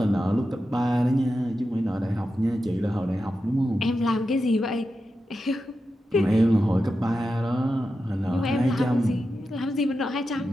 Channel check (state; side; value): normal; both; correlation 0.90